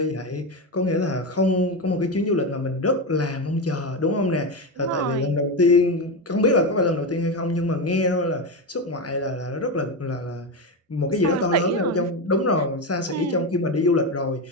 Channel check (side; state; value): both; normal; correlation 0.14